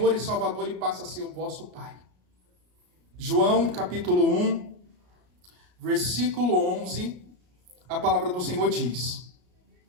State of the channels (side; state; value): left; late; 33 ms